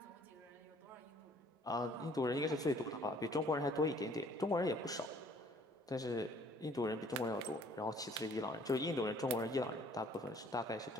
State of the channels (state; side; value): normal; both; correlation 0.58